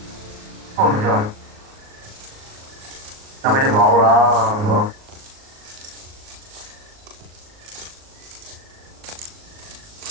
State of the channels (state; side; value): late; left; 38 ms